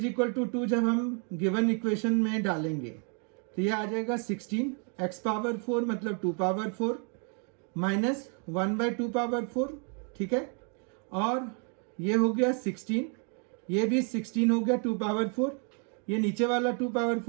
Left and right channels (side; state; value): left; quieter; 39.8 dB